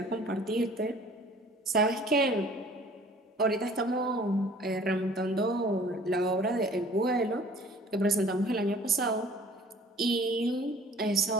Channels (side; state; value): both; normal; correlation 0.51